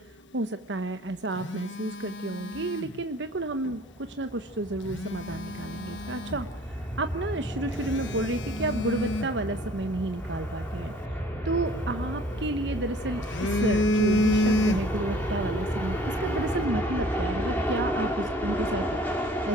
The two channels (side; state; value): both; normal; correlation 0.52